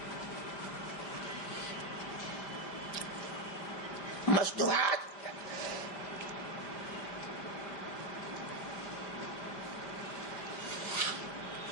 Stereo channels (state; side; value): late; right; 5.0 ms